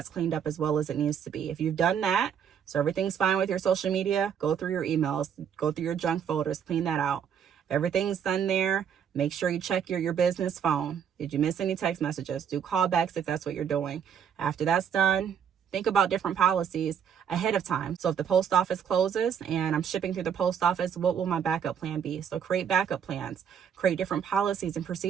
cleaned up as well as it needs to be. If you've done that, so everything's fine with your social media, go through your emails, go through your junk folders, clean that out. If everything's done there, make sure you check your business phone. Did you miss any text messages? Do callbacks if that's what you're doing. After that's done, think about different policies ahead of time. So if the post office closes and I'm shipping through the post office, what will my backup plan be? So create backup plans, create different policies and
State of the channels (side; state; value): left; quieter; 8.0 dB